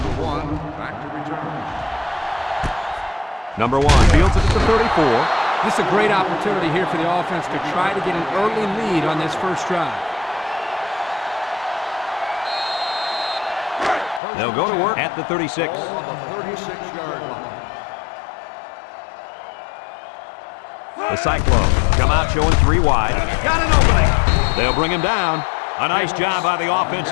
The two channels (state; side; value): drops out; right; at 14.2 s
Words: 1, back to return. Number 1 fields it at the 34. This is a great opportunity here for the offense to try to get an early lead on this first drive. They'll go to work at the 36. Ball on the 36-yard line. The Cyclones come out showing 3 wide. Got an opening. They'll bring him down. A nice job by the